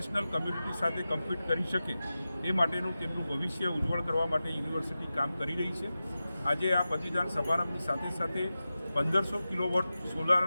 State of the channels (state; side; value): inverted; both; correlation -0.94